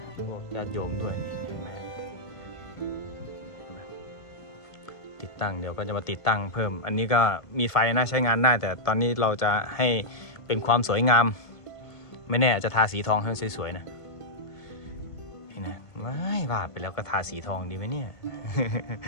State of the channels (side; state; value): right; late; 1.5 ms